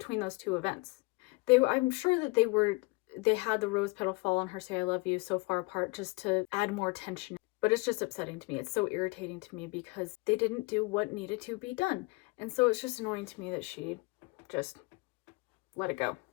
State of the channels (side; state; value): right; quieter; 26.0 dB